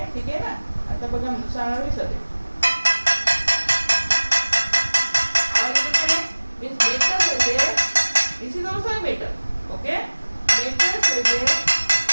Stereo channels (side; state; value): both; inverted; correlation -1.00